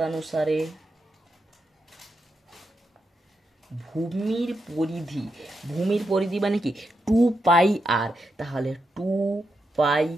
ভূমির পরিধি মানে কি 2 পাই আর, তাহলে 2 পাই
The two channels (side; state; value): both; normal; correlation 0.85